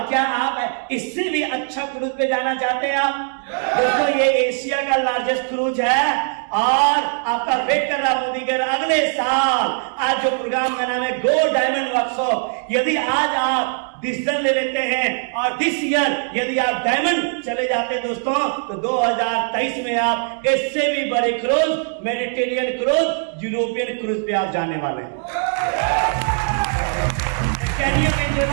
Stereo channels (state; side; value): silent; left; 58 dB below the other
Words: क्या आप इससे भी अच्छा क्रूज पे जाना चाहते हैं आप? दोस्तों ये एशिया का लार्जेस्ट क्रूज है और आपका वेट कर रहा मोदी के अगले साल। आज जो प्रोग्राम का नाम है गो डायमंड वर्कशॉप, यदि आज आप डिसीजन ले लेते हैं और दिस ईयर यदि आप डायमंड चले जाते हैं दोस्तों, तो 2023 में आप इससे भी बड़े cruise, Mediterranean cruise, European cruise पे आप जाने वाले हैं। Can you